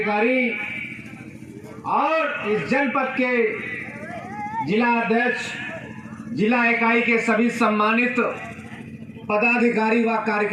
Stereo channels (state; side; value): identical; both; correlation 1.00